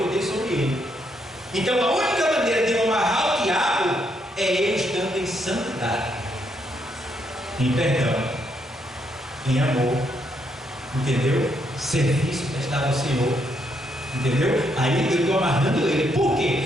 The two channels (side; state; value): both; normal; correlation 0.76